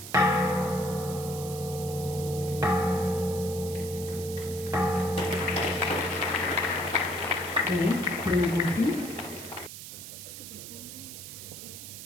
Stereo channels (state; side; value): noise; right; hiss, 11 dB below the sound